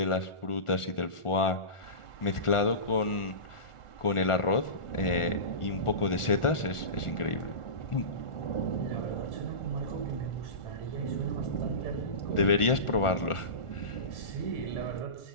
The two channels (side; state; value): right; late; 1.4 ms